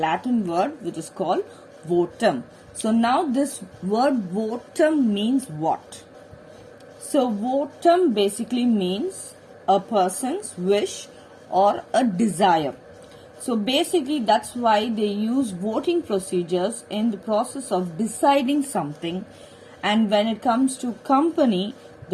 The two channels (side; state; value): both; identical; correlation 1.00